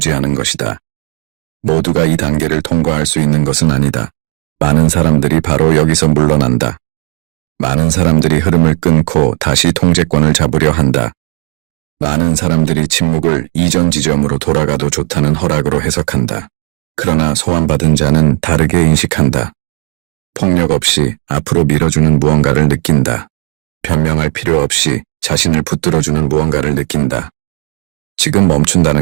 것이다. 모두가 이 단계를 통과할 수 있는 것은 아니다. 많은 사람들이 바로 여기서 물러난다. 많은 사람들이 흐름을 끊고 다시 통제권을 잡으려 한다. 많은 사람들이 침묵을 이전 지점으로 돌아가도 좋다는 허락으로 해석한다. 그러나 소환받은 자는 다르게 인식한다. 폭력 없이 앞으로 밀어주는 무언가를 느낀다. 변명할 필요 없이 자신을 붙들어주는 무언가를 느낀다. 지금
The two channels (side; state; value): left; quieter; 36.4 dB